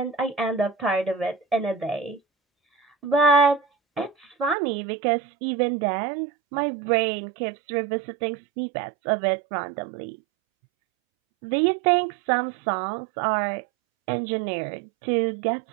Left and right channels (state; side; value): drops out; left; at 4.5 s